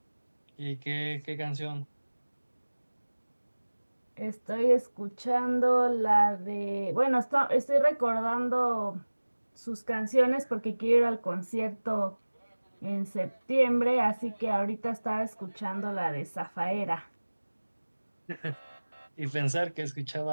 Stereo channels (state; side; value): inverted; both; correlation -1.00